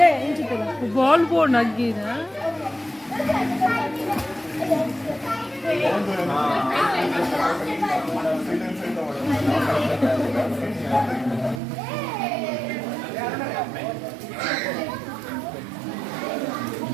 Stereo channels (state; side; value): drops out; left; at 11.6 s